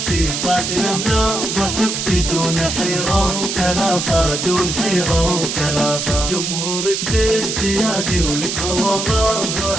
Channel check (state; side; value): noise; right; hiss, 3 dB below the sound